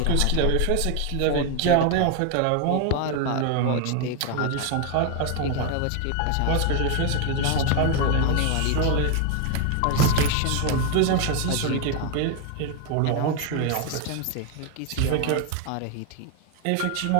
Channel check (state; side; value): different; both; correlation 0.01